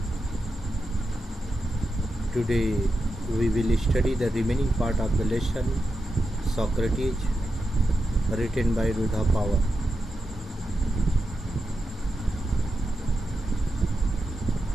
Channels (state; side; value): normal; both; correlation 0.89